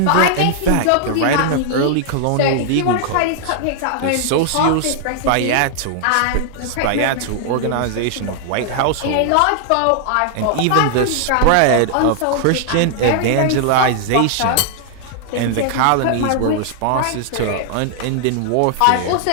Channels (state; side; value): different; both; correlation 0.00